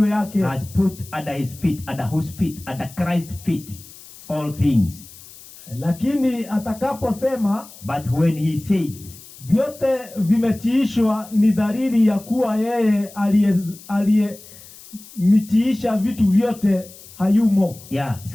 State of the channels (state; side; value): noise; left; hiss, 20 dB below the sound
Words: yake. Has put under his feet, under whose feet? Under Christ's feet all things. Lakini atakaposema, but when he said, vyote vimetiishwa, ni dalili ya kuwa yeye aliyemitiisha vitu vyote hayumo.